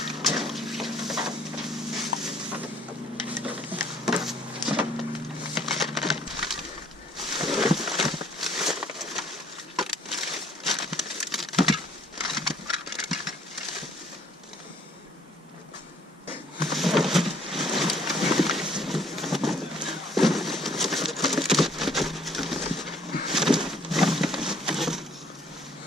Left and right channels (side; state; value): both; normal; correlation 0.60